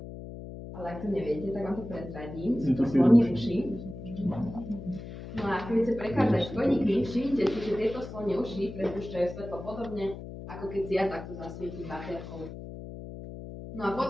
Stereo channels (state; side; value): noise; left; hum, 11 dB below the sound